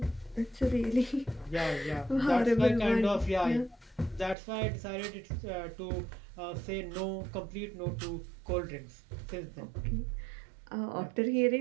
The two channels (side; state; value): left; drops out; at 4.4 s